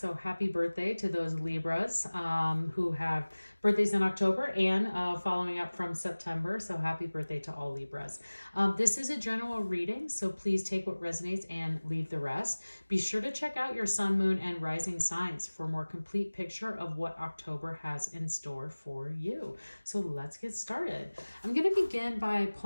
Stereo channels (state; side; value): inverted; both; correlation -1.00